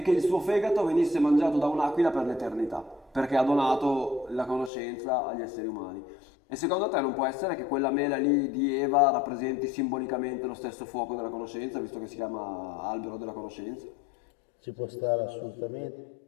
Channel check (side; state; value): right; drops out; at 4.7 s